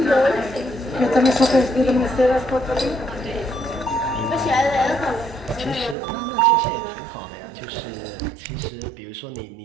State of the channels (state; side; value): drops out; left; at 6.0 s